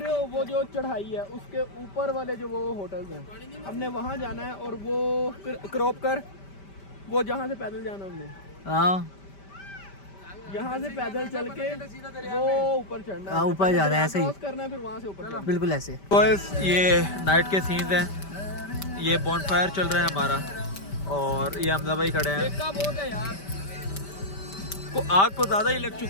हो, वो जो चढ़ाई है उसके ऊपर वाले जो वो होटल्स हैं, हमने वहाँ जाना है। और वो क्रॉप कर, वो जहाँ से पैदल जाना हमने, हाँ, यहाँ से पैदल चल के वो ऊपर चढ़ना है, ऊपर जाना है, ऐसे ही करना है, फिर वहाँ से ऊपर बिल्कुल ऐसे। बॉयज, ये नाइट के सीन्स हैं। ये बॉनफायर चल रहा है हमारा, और ये हमजा भाई खड़े हैं। बहुत है यार, को आग को ज़्यादा ही लग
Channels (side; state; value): right; late; 5.1 ms